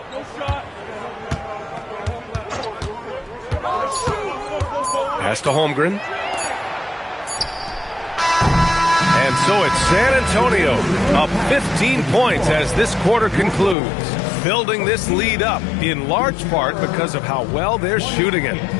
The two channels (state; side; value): drops out; right; at 13.8 s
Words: Pass to Holmgren. And so it's San Antonio up 15 points as this quarter concludes, building this lead up in large part because of how well they're shooting it.